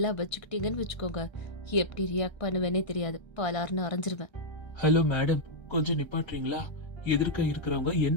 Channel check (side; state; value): right; late; 1.3 ms